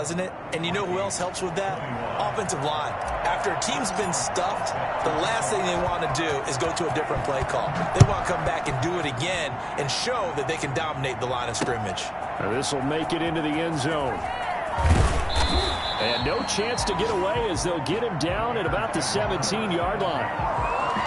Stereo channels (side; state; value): both; identical; correlation 1.00